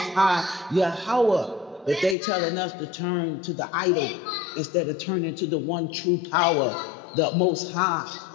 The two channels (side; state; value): right; drops out; at 2.1 s